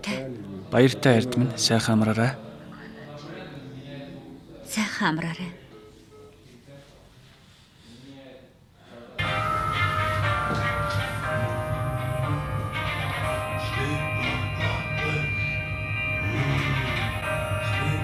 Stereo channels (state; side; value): identical; both; correlation 1.00